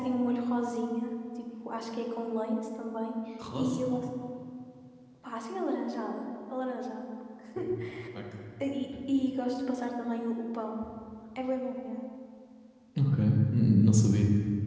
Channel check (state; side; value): identical; both; correlation 1.00